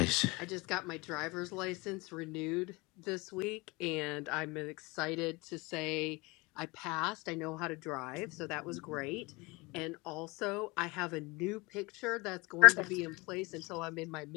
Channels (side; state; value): right; quieter; 25.0 dB